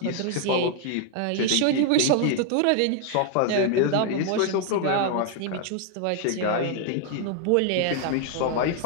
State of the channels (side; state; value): both; different; correlation 0.00